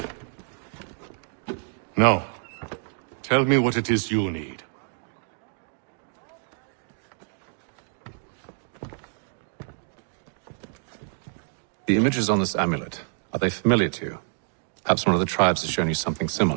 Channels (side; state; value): left; silent; 60 dB below the other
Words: Now, tell me what it is you need. The images on this amulet, are they familiar to you? Perhaps one of the tribes has shown you something